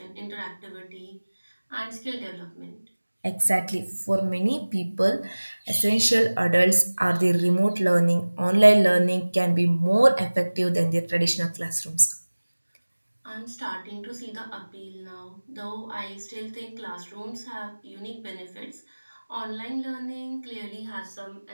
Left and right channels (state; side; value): inverted; both; correlation -1.00